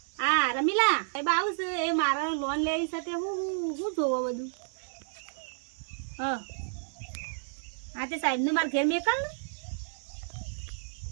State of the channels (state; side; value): silent; left; 57 dB below the other